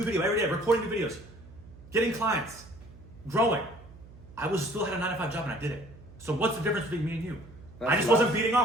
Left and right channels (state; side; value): noise; right; hum, 20 dB below the sound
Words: video every day, recording new videos, getting clients, growing. I still had a 9-to-5 job and I did it. So what's the difference between me and you? I just wasn't beating